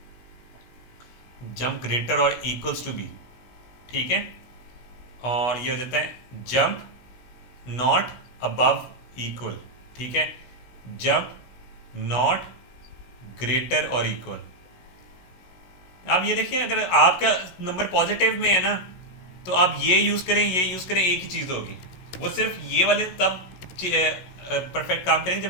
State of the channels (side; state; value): right; late; 16 ms